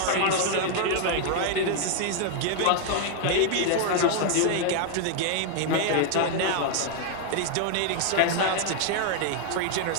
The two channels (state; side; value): different; both; correlation 0.00